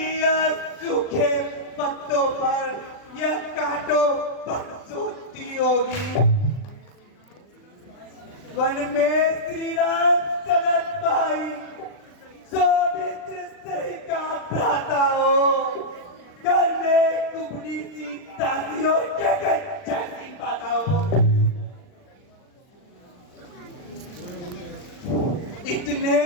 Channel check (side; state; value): right; late; 39 ms